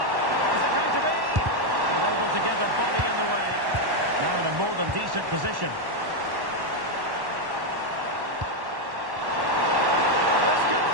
from decent position. This could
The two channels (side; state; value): left; late; 1.1 ms